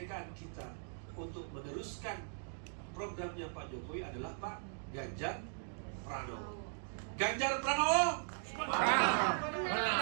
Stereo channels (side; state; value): left; silent; digital silence